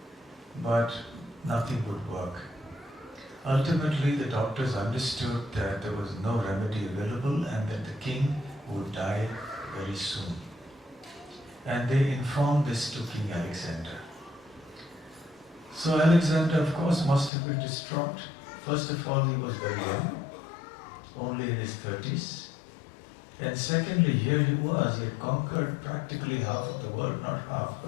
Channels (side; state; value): right; drops out; at 17.3 s